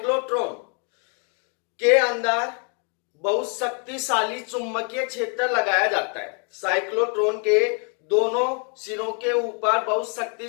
के अंदर बहुत शक्तिशाली चुंबकीय क्षेत्र लगाया जाता है। साइक्लोट्रॉन के दोनों सिरों के ऊपर बहुत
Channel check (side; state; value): right; quieter; 38.7 dB